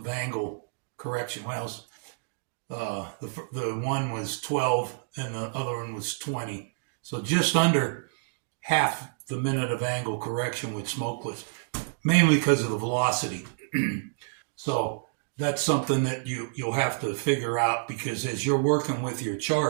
angle correction. Well, The one was 12 and the other one was 20. So just under half the minute of angle correction with smokeless, mainly because of the velocity. So that's something that you'll have to figure out, because as you're working with your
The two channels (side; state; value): left; silent; digital silence